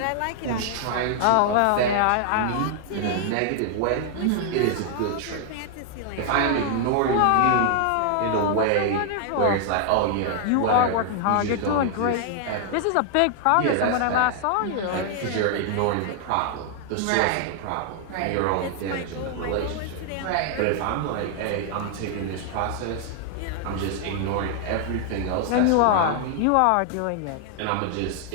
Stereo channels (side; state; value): both; different; correlation 0.00